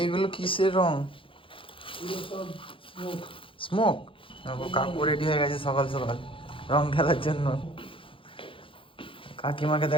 এগুলো কিসের রং? স্মোক। দেখো কাকু রেডি হয়ে গেছে সকাল সকাল রং খেলার জন্য। কাকিমাকে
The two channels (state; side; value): late; right; 0.25 ms